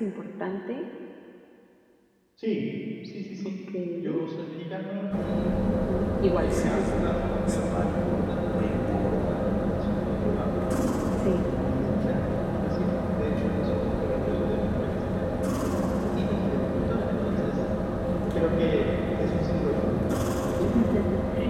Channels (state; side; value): identical; both; correlation 1.00